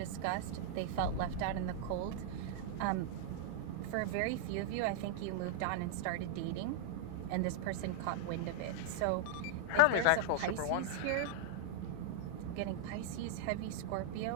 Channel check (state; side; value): different; both; correlation -0.01